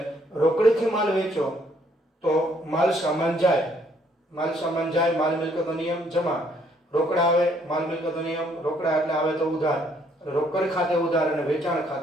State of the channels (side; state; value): both; normal; correlation 0.67